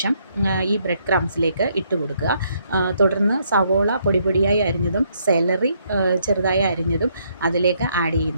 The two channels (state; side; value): inverted; both; correlation -0.72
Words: ഈ ബ്രെഡ് ക്രംസിലേക്ക് ഇട്ട് കൊടുക്കുക. തുടർന്ന് സവോള പൊടിയായി അരിഞ്ഞതും സെലറി ചെറുതായി അരിഞ്ഞതും അതിലേക്ക് ആഡ്